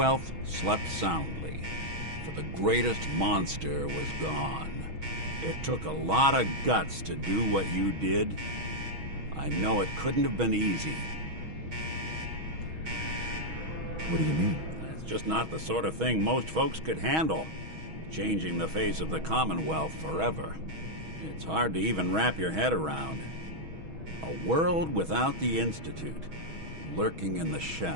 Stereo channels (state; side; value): late; left; 6.3 ms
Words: slept soundly, for the greatest monster was gone. It took a lot of guts to do what you did. I know it couldn't have been easy. What do you mean? It's just not the sort of thing most folks could handle. Changing the face of the Commonwealth forever. It's hard to even wrap your head around. A world without the Institute, lurking in the